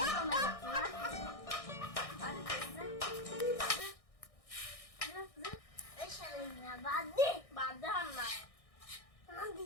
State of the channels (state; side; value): late; right; 1.6 ms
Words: বাদ দে বাদ দে হাম না